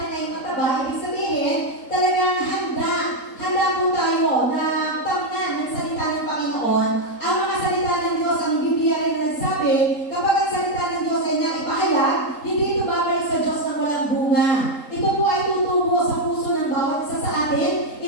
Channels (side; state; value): right; late; 3.8 ms